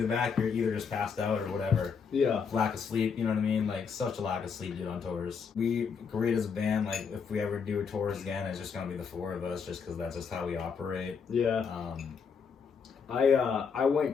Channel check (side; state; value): right; quieter; 6.1 dB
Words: the back, you're either just passed out or whatever. Yeah. Lack of sleep, you know what I mean? Like, such a lack of sleep, dude, on tours. We agreed as a band, like, if we ever do tours again, it's just gonna be the four of us, just because that's just how we operate. Yeah. I went